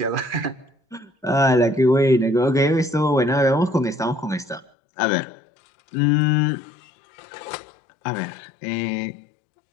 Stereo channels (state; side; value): drops out; right; at 4.7 s